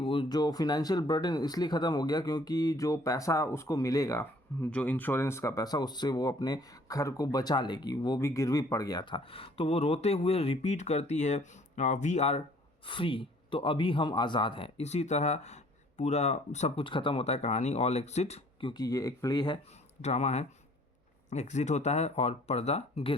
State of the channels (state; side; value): normal; both; correlation 0.57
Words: जो फिनेंशियल बर्डन इसलिए ख़त्म हो गया क्योंकि जो पैसा उसको मिलेगा, जो इंश्योरेंस का पैसा, उससे वो अपने घर को बचा लेगी, वो भी गिरवी पड़ गया था। तो वो रोते हुए रिपीट करती है वी आर फ्री, तो अभी हम आज़ाद हैं। इसी तरह पूरा सब कुछ ख़त्म होता है कहानी। ऑल एग्जिट, क्योंकि ये एक प्ले है, ड्रामा है, एग्जिट होता है और पर्दा